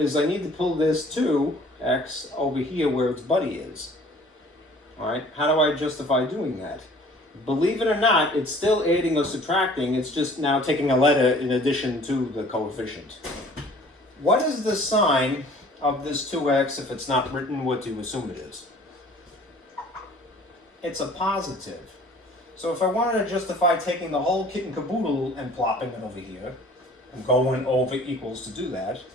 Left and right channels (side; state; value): both; normal; correlation 0.51